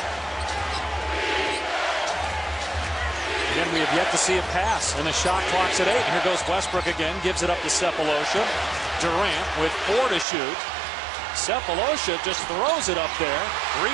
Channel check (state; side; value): drops out; left; at 10.2 s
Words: Again, we have yet to see a pass, and the shot clock's at 8. Here goes Westbrook again, gives it up to Sefolosha. Durant with 4 to shoot. Sefolosha just throws it up there.